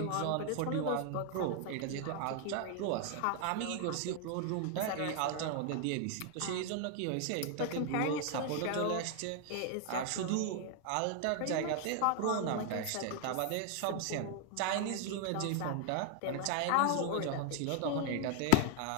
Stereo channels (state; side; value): different; both; correlation 0.00